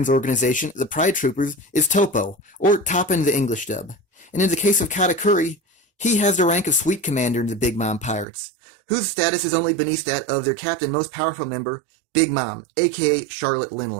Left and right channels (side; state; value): left; drops out; at 8.2 s